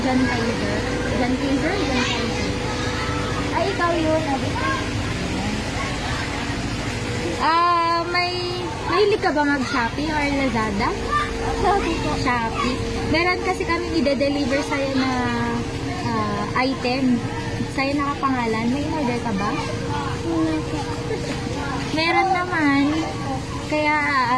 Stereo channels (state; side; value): identical; both; correlation 1.00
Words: John Kaiser? John Kaiser? John Kaiser. Ay, ikaw yun. Mahilig ka ba mag-Shopee or Lazada? Shopee po. Shopee. Meron kasi kami i-deliver sa'yo na item. Sa'yo nakapangalan. May in-order ka ba? Meron naman. Kaya